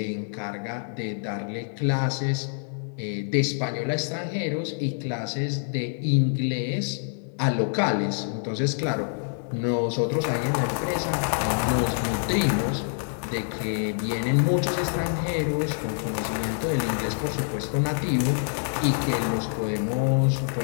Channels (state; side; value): silent; right; digital silence